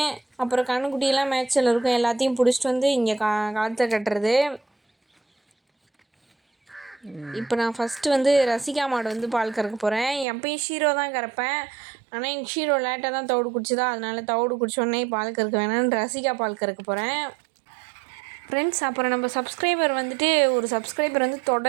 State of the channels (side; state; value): left; drops out; at 10.2 s